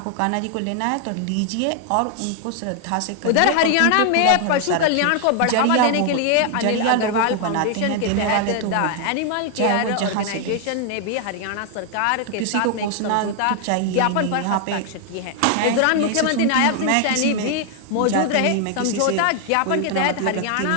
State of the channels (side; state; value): both; different; correlation 0.00